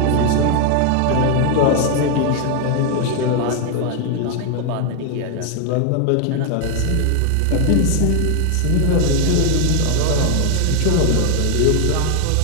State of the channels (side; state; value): both; different; correlation 0.01